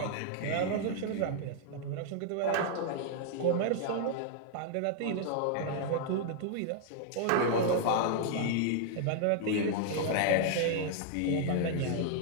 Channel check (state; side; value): different; both; correlation -0.01